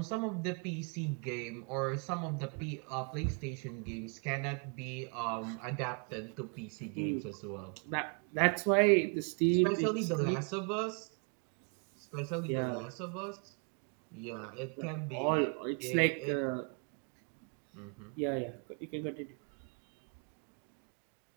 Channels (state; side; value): quieter; left; 39.9 dB